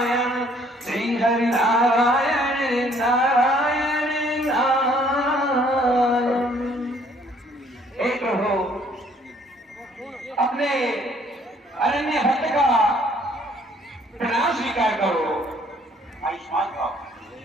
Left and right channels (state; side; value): normal; both; correlation 0.61